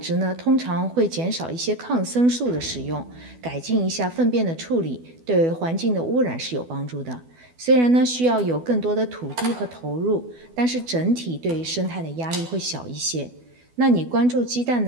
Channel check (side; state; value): left; late; 12 ms